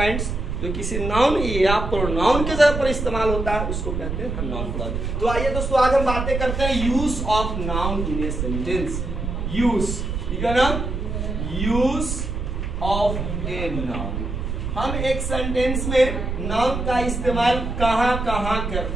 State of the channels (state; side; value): noise; right; rumble, 3 dB below the sound